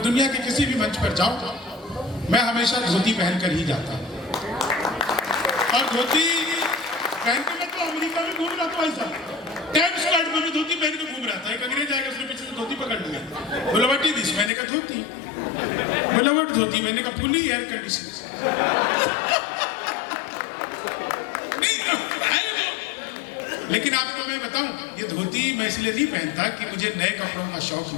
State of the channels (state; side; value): drops out; right; at 14.5 s